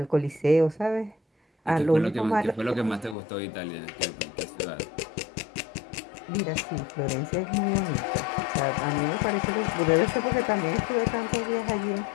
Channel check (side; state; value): right; drops out; at 3.2 s